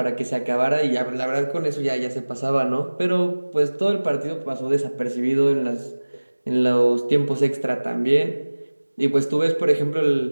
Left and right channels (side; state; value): both; inverted; correlation -1.00